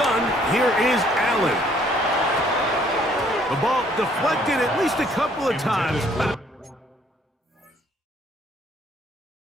here is Allen. The ball deflected at least a couple of times.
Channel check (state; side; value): normal; both; correlation 0.63